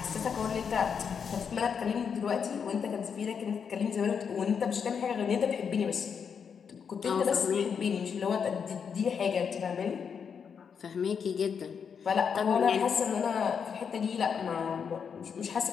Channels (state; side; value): quieter; right; 6.7 dB